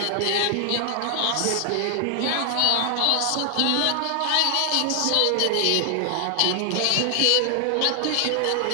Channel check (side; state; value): both; different; correlation 0.00